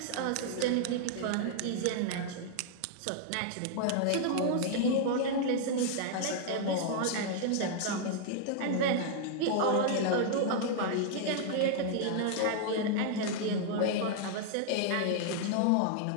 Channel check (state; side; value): different; both; correlation -0.01